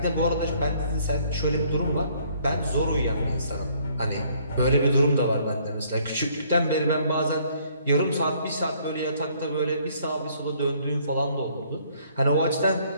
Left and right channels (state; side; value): inverted; both; correlation -0.63